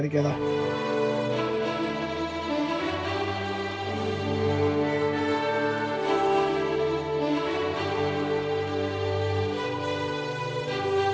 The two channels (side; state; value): both; identical; correlation 1.00